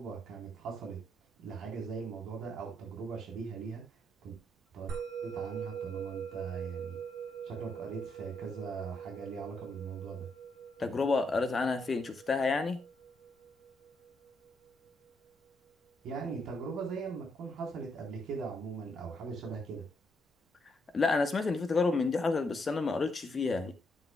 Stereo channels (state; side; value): normal; both; correlation 0.76